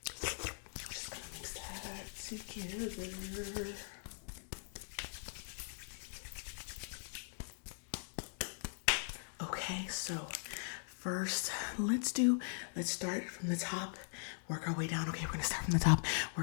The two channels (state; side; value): silent; right; digital silence